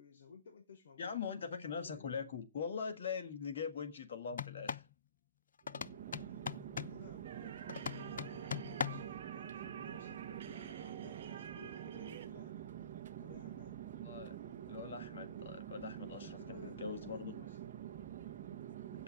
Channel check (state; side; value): inverted; both; correlation -0.48